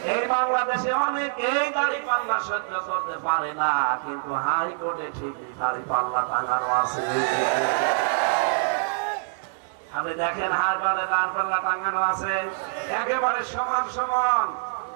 এই বাংলাদেশে অনেক এই দাড়ি পাল্লা সহ্য করতে পারে না, কিন্তু হাইকোর্টে ঠিকই দাড়ি পাল্লা টাঙানো আছে। আপনি দেখেন হাইকোর্টে দাড়ি পাল্লা টাঙানো আছে, একেবারে সমান সমান।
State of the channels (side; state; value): left; silent; 62 dB below the other